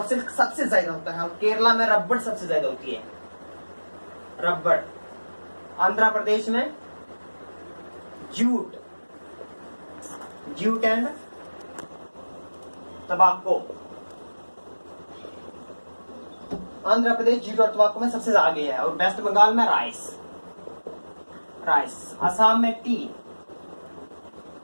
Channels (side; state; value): both; inverted; correlation -1.00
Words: सिल्क सबसे ज्यादा होता है, और केरला में रबड़ सबसे ज्यादा होती है, रबड़। आंध्र प्रदेश में जूट, जूट एंड तंबाकू। आंध्र प्रदेश जूट और तंबाकू में सबसे आगे है। और वेस्ट बंगाल में राइस, राइस। असम में टी,